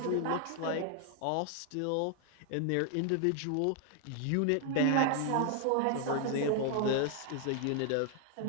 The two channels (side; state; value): both; different; correlation 0.00